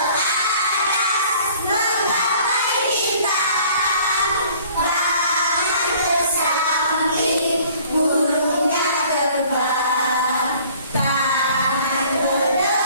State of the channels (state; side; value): inverted; both; correlation -0.54